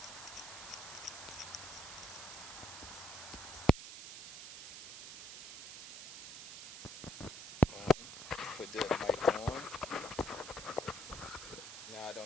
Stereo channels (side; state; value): right; noise; hiss, 9 dB below the sound